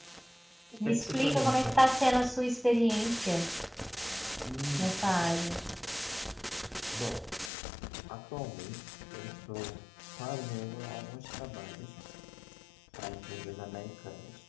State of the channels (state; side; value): drops out; right; at 7.5 s